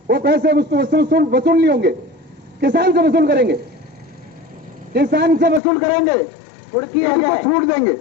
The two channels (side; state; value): right; drops out; at 5.6 s